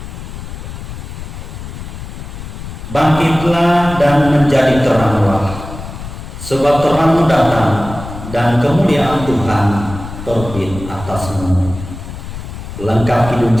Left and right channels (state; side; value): noise; left; rumble, 10 dB below the sound